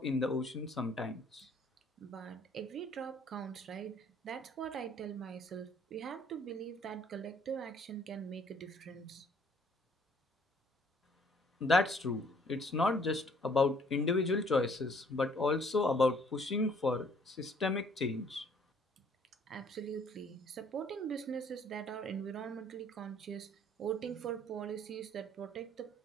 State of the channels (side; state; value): both; normal; correlation 0.61